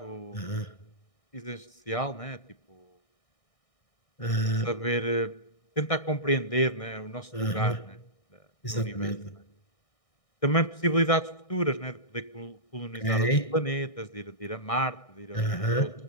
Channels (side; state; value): right; late; 1.6 ms